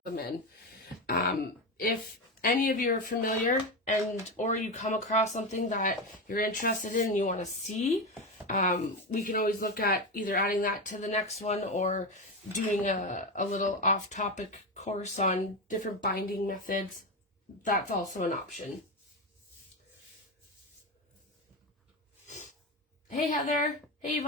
in. If any of you are familiar or you come across something that you're interested in and you want to see, we can always look at either adding that to the next one or doing a little off-topic course on different binding methods. That's also an option. Hey Heather. Hey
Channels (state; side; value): normal; both; correlation 0.16